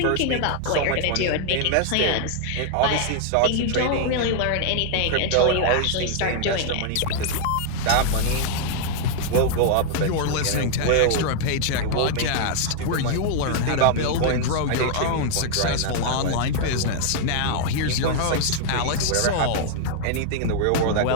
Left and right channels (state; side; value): different; both; correlation 0.00